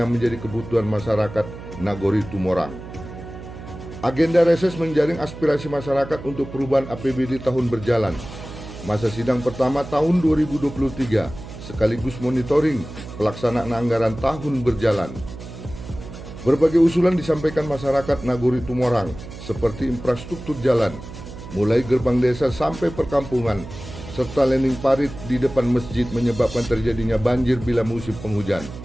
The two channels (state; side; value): noise; right; hum, 13 dB below the sound